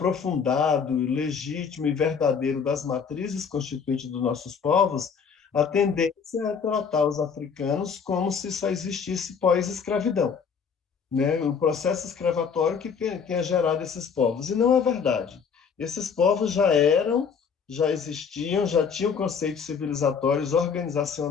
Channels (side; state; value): right; quieter; 6.4 dB